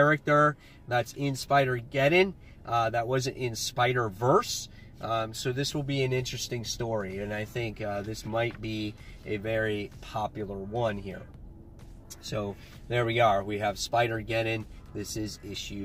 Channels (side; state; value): both; identical; correlation 1.00